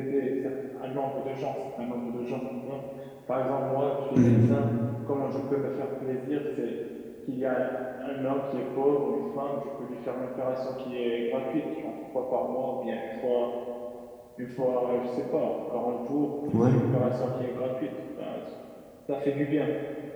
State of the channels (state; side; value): identical; both; correlation 1.00